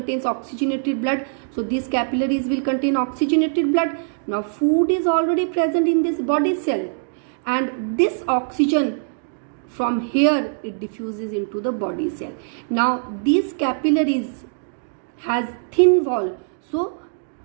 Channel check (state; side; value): silent; left; digital silence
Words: oxygenated blood, so these capillaries will contain oxygenated blood. Now food is already present in this body cell, and this oxygen from here, it diffuses into the body cell. Now these capillaries has thin wall, so